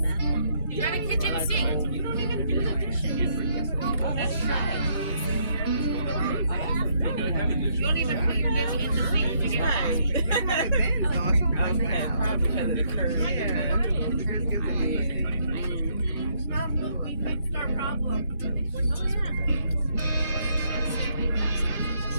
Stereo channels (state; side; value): inverted; both; correlation -0.72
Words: You got a kitchen sink. You don't even do the dishes. That's right. You don't even put your dish in the sink to get right. Probably because of the curve. We fixed our problem.